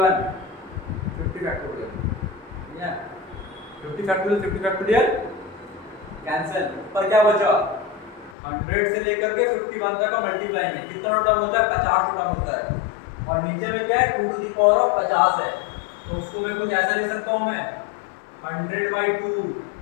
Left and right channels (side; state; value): right; drops out; at 8.3 s